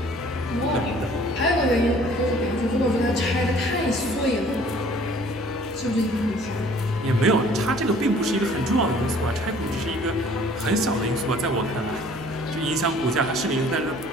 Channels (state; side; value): noise; left; hum, 21 dB below the sound